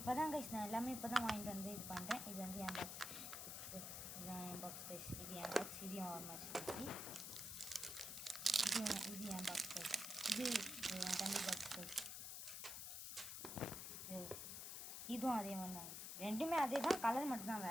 தான் கைஸ், நான் எல்லாமே இப்போ தான் வாங்கிட்டு வந்து இது பண்ணுறேன். இது வந்து என் பாக்ஸ். இதுதான் என் பாக்ஸ் கைஸ். இது என் பாக்ஸ். இதையும் ஓரமாக வச்சுருக்கேன். இது என் பாக்ஸ் கைஸ். இது என் தம்பி பாக்ஸ் கைஸ். இதுவும் அதே மாதிரி தான் கைஸ். ரெண்டுமே அதே தான், கலர் மட்டும்தான்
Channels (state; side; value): noise; left; hiss, 6 dB below the sound